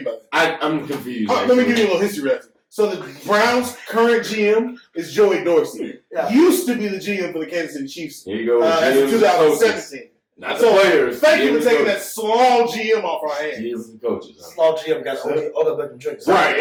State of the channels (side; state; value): both; identical; correlation 1.00